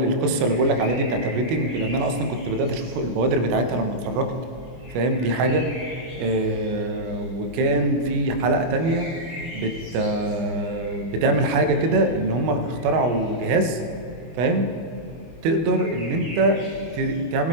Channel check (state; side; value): late; left; 25 ms